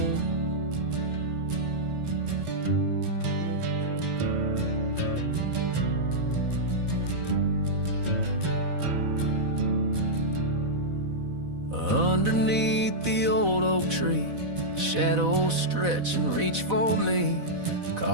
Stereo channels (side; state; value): left; late; 4.0 ms